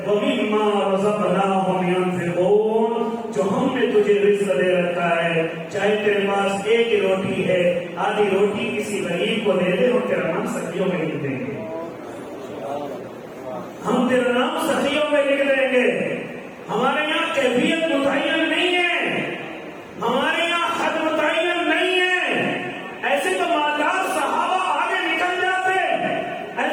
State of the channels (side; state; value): both; identical; correlation 1.00